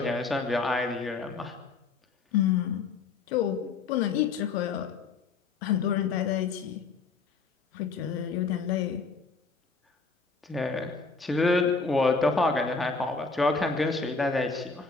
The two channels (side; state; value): right; quieter; 4.6 dB